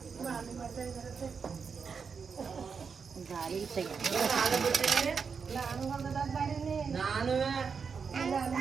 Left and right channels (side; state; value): left; quieter; 5.8 dB